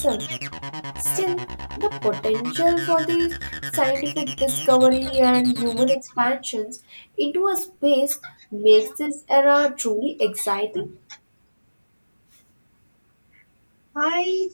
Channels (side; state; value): both; inverted; correlation -1.00